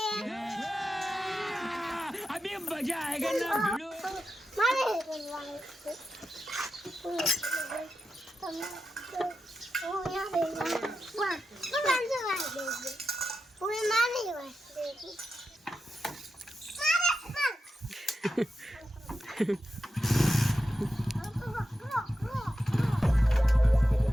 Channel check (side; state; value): both; normal; correlation 0.89